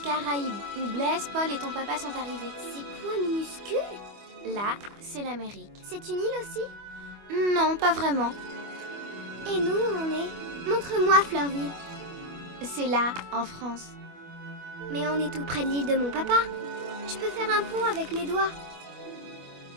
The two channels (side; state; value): left; late; 25 ms